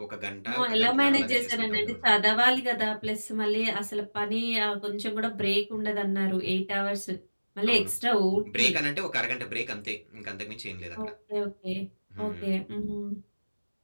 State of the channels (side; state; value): both; inverted; correlation -1.00